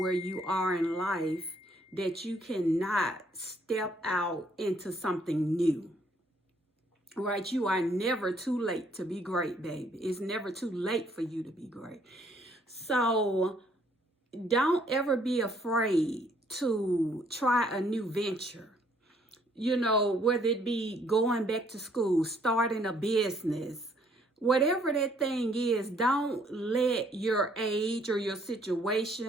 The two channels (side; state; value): both; normal; correlation 0.65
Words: where you are in life, that you cannot step out into something new. Right? You are never too late to be great, baby. It's never too late for you to be great. So don't ever be afraid to try a new venture. You know, whether it be going back to school, starting a business, whatever that thing is, don't let your age or your